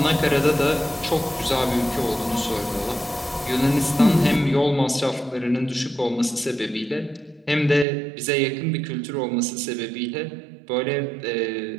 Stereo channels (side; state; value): left; drops out; at 7.9 s